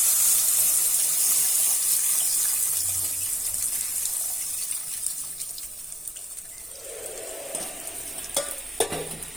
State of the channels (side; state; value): both; normal; correlation 0.90